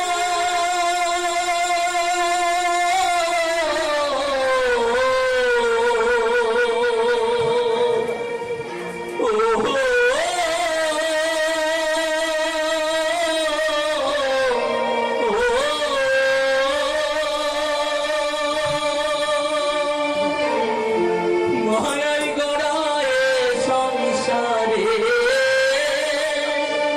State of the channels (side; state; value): both; identical; correlation 1.00